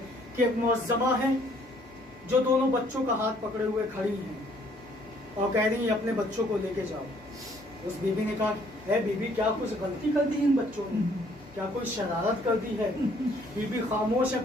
कि एक मुअज़्ज़मा है जो दोनों बच्चों का हाथ पकड़े हुए खड़ी हैं और कह रही हैं अपने बच्चों को लेके जाओ। उस बीवी ने कहा, है बीबी क्या कुछ गलती कर दी इन बच्चों ने, क्या कोई शरारत कर दी है? बीबी खामोश है,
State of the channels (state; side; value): normal; both; correlation 0.62